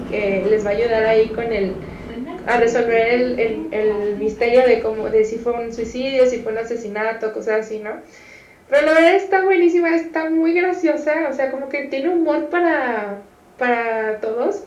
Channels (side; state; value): both; identical; correlation 1.00